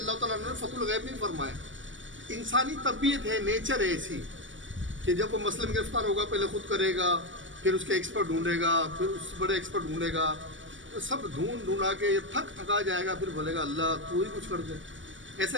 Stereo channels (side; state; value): left; late; 0.56 ms